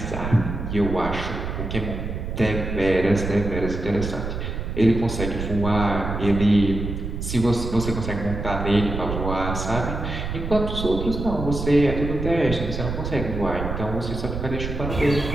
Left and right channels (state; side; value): noise; right; rumble, 5 dB below the sound